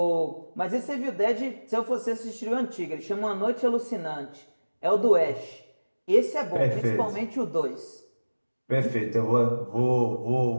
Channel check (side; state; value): both; inverted; correlation -1.00